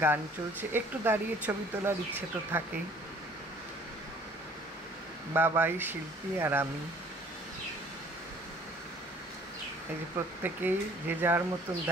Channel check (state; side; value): normal; both; correlation 0.54